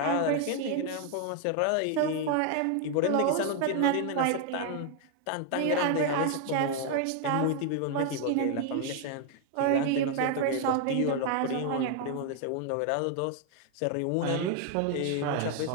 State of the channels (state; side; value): different; both; correlation 0.00